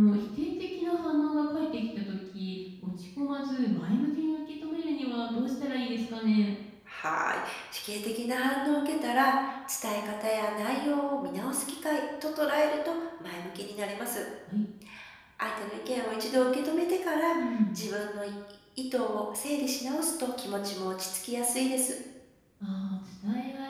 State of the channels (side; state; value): both; identical; correlation 1.00